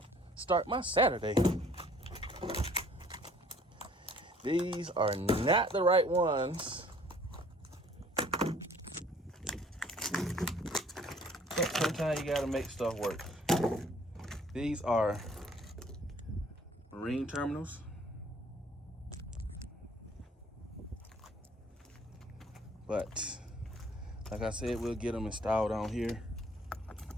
start my Saturday. These are not the right ones. Sometimes you gotta make stuff work. These are ring terminals. But like I said, we'll get them installed on here.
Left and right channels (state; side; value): normal; both; correlation 0.56